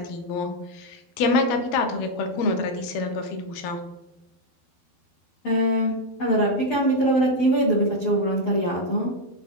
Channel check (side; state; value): right; late; 12 ms